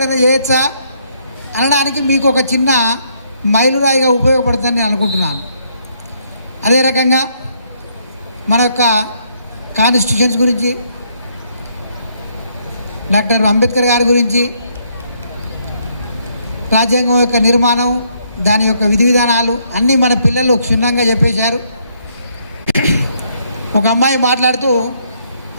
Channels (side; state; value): both; inverted; correlation -0.71